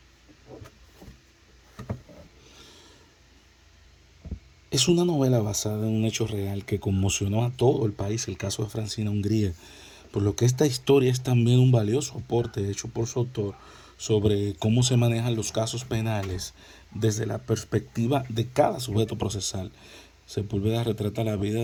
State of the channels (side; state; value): both; identical; correlation 1.00